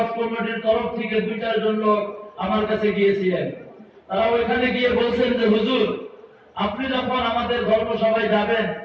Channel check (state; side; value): identical; both; correlation 1.00